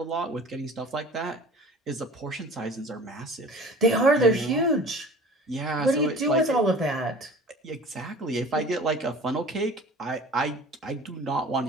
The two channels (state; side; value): normal; both; correlation 0.44